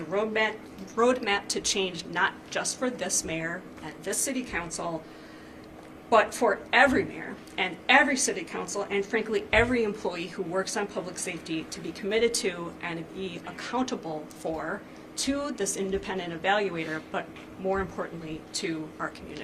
roadmap to change not just for this mayor and this city council, but for every mayor and every city council and frankly every employee who works on public safety to be committed to and be accountable for to this independent evaluator, but more importantly to our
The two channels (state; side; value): identical; both; correlation 1.00